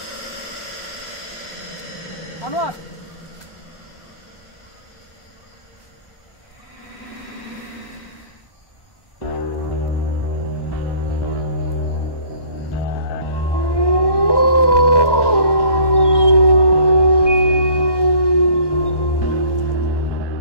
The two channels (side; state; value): right; late; 1.1 ms